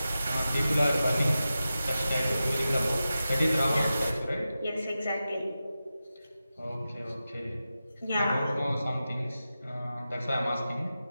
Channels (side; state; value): both; inverted; correlation -0.92